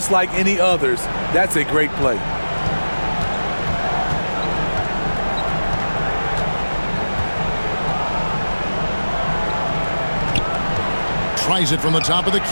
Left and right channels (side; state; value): both; inverted; correlation -1.00